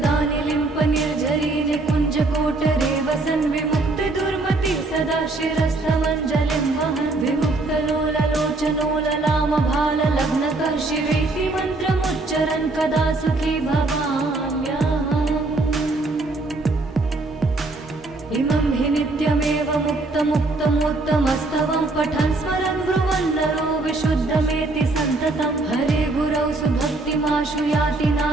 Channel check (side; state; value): left; quieter; 3.1 dB